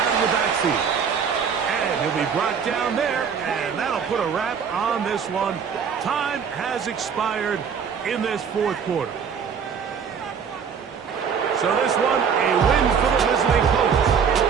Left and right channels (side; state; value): left; quieter; 6.8 dB